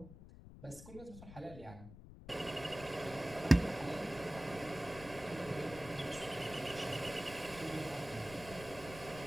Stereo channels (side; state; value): left; noise; rumble, 15 dB below the sound